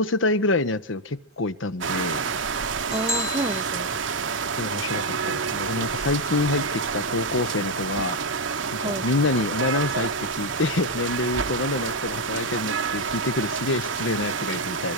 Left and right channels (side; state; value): both; normal; correlation 0.04